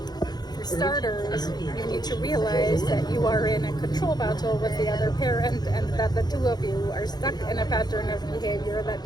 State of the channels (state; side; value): late; right; 0.20 ms